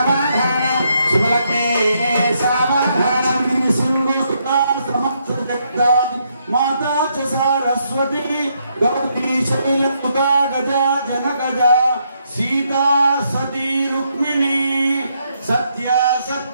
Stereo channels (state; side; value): inverted; both; correlation -0.76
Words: सुभलके सावधान माता च सरस्वती गौरी शैलसुता गजा जनगजा सीता सती रुक्मिणी सत्या